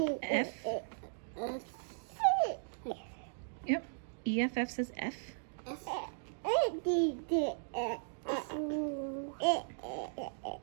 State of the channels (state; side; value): silent; left; digital silence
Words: F. Yep. EFF says F.